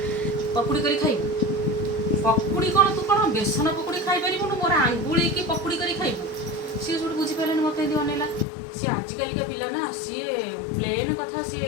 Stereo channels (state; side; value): drops out; right; at 8.5 s